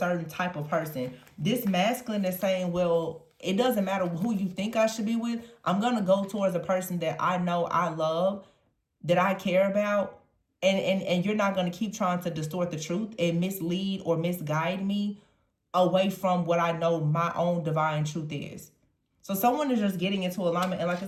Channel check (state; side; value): identical; both; correlation 1.00